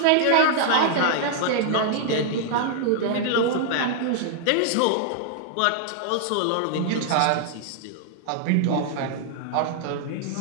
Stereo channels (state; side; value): different; both; correlation -0.01